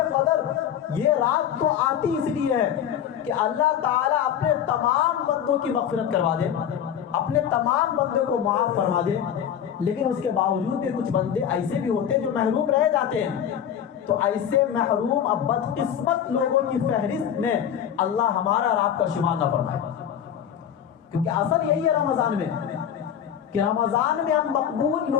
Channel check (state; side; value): quieter; right; 9.2 dB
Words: قدر یہ رات تو آتی اس لیے ہے کہ اللہ تعالیٰ اپنے تمام بندوں کی مغفرت کروا دے، اپنے تمام بندوں کو معاف فرما دے، لیکن اس کے باوجود بھی کچھ بندے ایسے بھی ہوتے ہیں جو محروم رہ جاتے ہیں۔ تو ایسے محروم اب بدقسمت لوگوں کی فہرست میں اللہ ہمارا اور آپ کا شمار نہ فرمائے، کیونکہ اصل یہی ہے رمضان میں کہ رمضان میں ہم مقبول